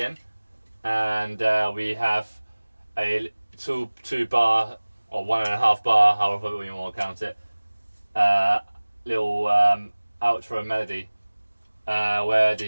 and we have a 2 bar or 1.5 bar, however you want to count it, little outro melody where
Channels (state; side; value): inverted; both; correlation -1.00